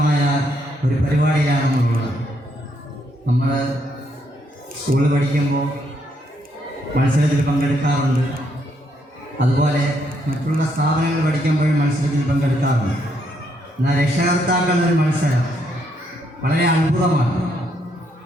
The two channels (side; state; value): both; normal; correlation 0.74